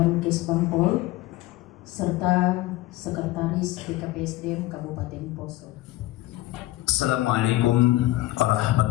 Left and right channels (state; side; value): quieter; right; 17.6 dB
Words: Bangpol serta Sekretaris BKPSDM Kabupaten Poso. Assalamualaikum